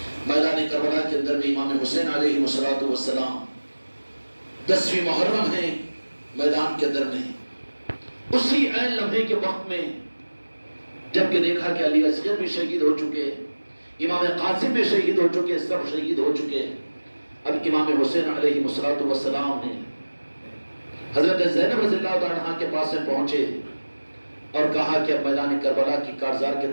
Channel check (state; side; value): inverted; both; correlation -1.00